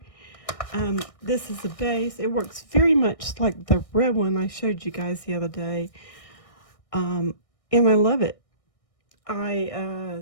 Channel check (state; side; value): late; right; 1.6 ms